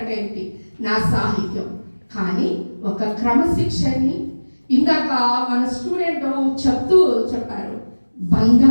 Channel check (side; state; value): both; inverted; correlation -1.00